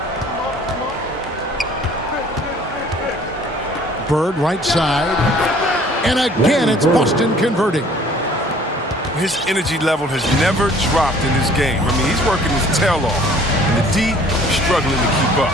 Bird right side. And again, it's Boston converting. His energy level has never dropped in his game. I mean, he's working his tail off. And the D struggling to keep up.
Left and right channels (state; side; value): normal; both; correlation 0.54